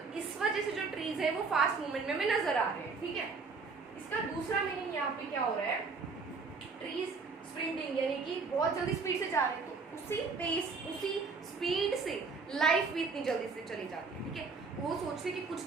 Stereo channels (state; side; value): quieter; left; 4.6 dB